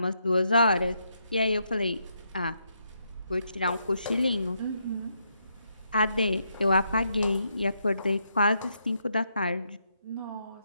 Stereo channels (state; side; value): inverted; both; correlation -0.78